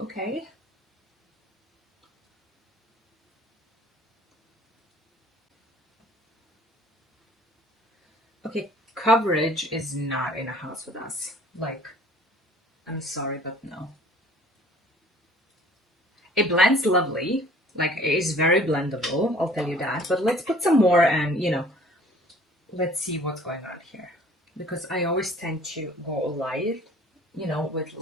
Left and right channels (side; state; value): both; normal; correlation 0.52